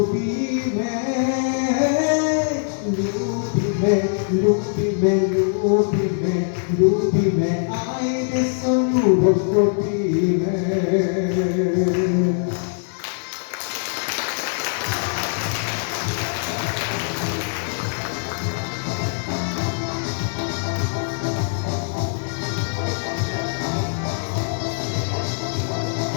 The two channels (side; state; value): right; silent; digital silence